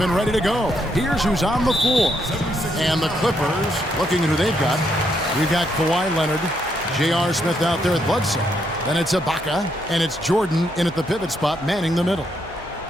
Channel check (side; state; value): both; normal; correlation 0.76